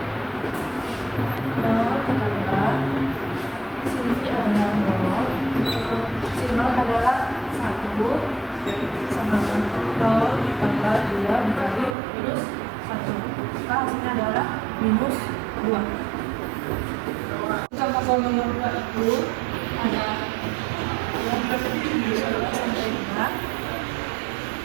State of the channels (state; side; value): drops out; left; at 12.0 s